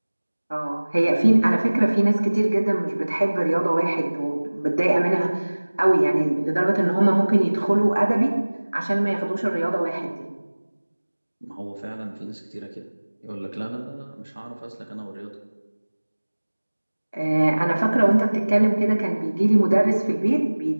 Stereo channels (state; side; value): inverted; both; correlation -1.00